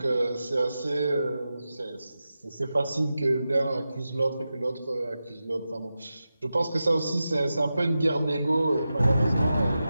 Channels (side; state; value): both; inverted; correlation -0.92